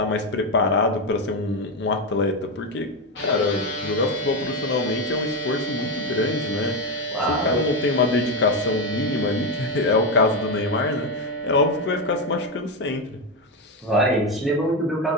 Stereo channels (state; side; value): normal; both; correlation 0.11